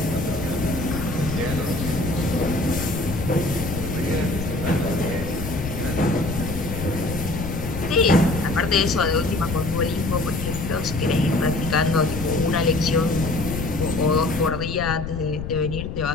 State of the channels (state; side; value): noise; left; rumble, 5 dB below the sound